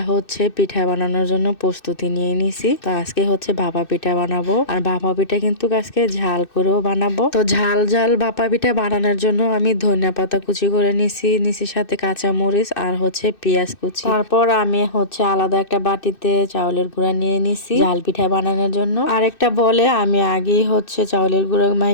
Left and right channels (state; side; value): late; right; 2.6 ms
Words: হচ্ছে পিঠা বানানোর জন্য প্রস্তুতি নিয়ে নিছি। তো আজকে হচ্ছে ভাপা পিঠা বানাবো, আর ভাপা পিঠা কিন্তু আজকে ঝাল করেও বানাবো। তো ঝাল ঝাল ভাপা পিঠা বানানোর জন্য আমি ধনিয়া পাতা কুচি করে নিছি সাথে কাঁচা মরিচ আর হচ্ছে পেঁয়াজ কুচি। তারপর আমি হচ্ছে আলাদা একটা বাটিতে চাউলের গুঁড়া নিয়ে নিছি ঝাল পিঠা বানানোর জন্য। আর একটা বলে আমি আগেই হচ্ছে চাউলের গুঁড়ো